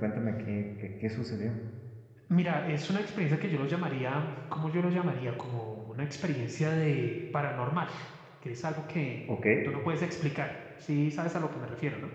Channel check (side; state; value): both; identical; correlation 1.00